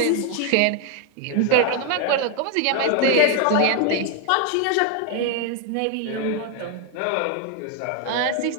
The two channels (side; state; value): both; different; correlation 0.01